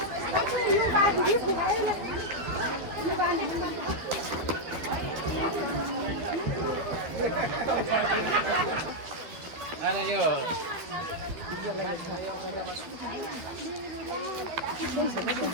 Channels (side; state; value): left; late; 12 ms